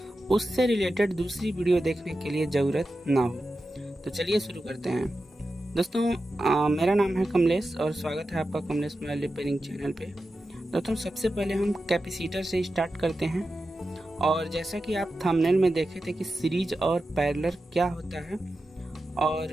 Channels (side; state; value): both; normal; correlation 0.92